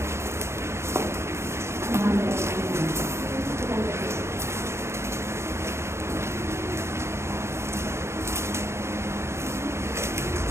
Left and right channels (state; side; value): late; left; 0.13 ms